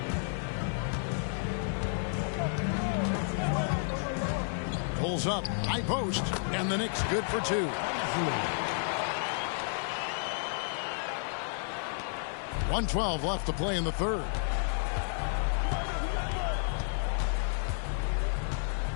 Pulls up, high post, and the Knicks good for 2. 1:12 left to play in the third.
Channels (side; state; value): right; silent; digital silence